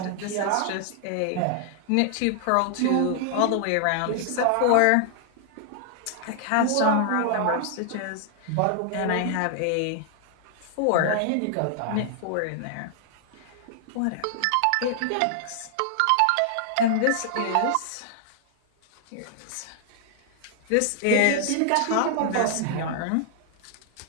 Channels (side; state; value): both; different; correlation 0.00